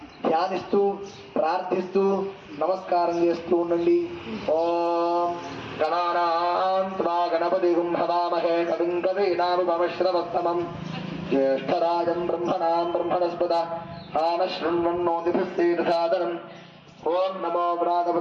ధ్యానిస్తూ ప్రార్థిస్తూ నమస్కారం చేస్తూ ఉండండి. ఓం గణానాం త్వా గణపతిం హవామహే కవిం కవీనాముపమశ్రవస్తమం జ్యేష్ఠరాజం బ్రహ్మణాం బ్రహ్మణస్పద ఆనశృణ్వన్నోతిభిస్సేదసాదరం. ఓం నమో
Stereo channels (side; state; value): both; identical; correlation 1.00